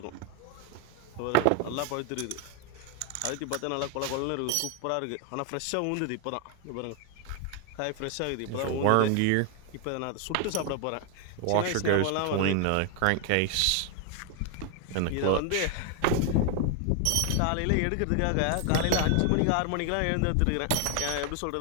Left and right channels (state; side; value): different; both; correlation 0.00